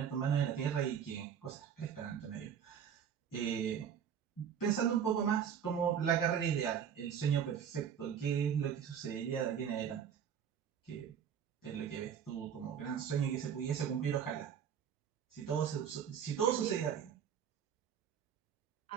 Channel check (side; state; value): left; quieter; 8.2 dB